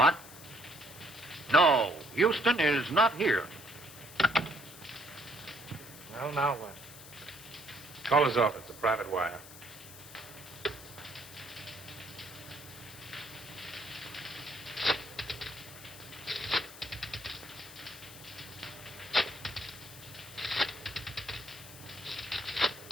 No, Houston is not here. Well, now what? Call his office, a private wire.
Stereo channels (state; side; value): noise; left; hiss, 16 dB below the sound